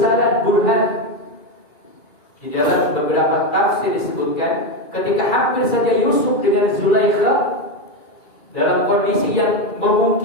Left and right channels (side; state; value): right; late; 2.4 ms